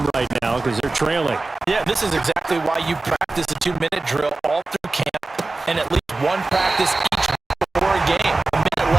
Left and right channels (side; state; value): left; quieter; 3.3 dB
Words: right now because they're trailing. Yeah, this is exactly why you practice a 2-minute drill all through camp and at least 1 practice each before a game. A minute